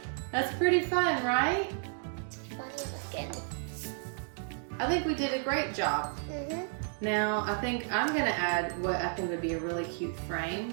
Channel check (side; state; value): left; silent; 56 dB below the other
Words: That's pretty fun, right? I think we did a great job. Mm-hmm. Now, I think I'm gonna add what I think would be a really cute